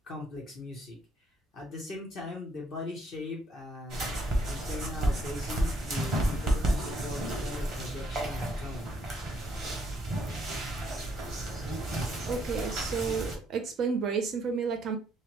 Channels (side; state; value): both; normal; correlation 0.71